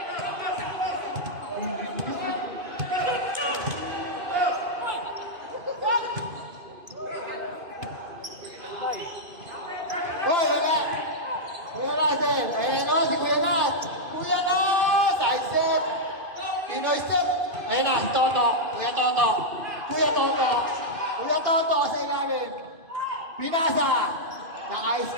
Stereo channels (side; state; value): left; late; 2.5 ms